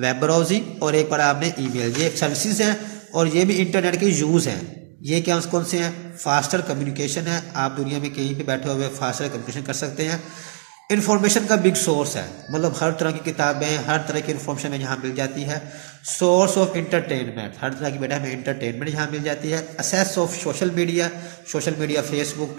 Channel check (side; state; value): left; silent; digital silence